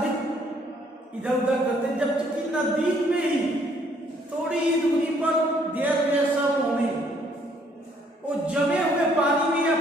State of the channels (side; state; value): both; normal; correlation 0.65